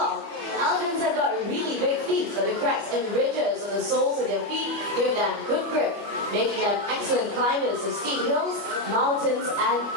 Elephants have got really big feet, so the cracks and ridges on the soles of their feet give them good grip, making them excellent climbers of steep hills, mountains, and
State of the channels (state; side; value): late; left; 25 ms